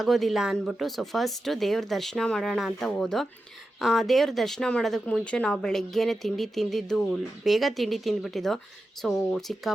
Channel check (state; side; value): normal; both; correlation 0.91